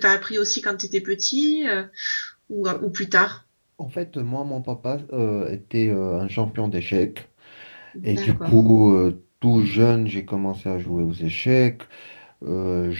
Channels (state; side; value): inverted; both; correlation -1.00